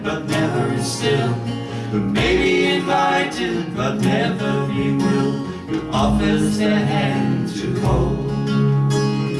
but never is still, who may be invited but never be willed, who offers their hand to hold.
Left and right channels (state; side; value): identical; both; correlation 1.00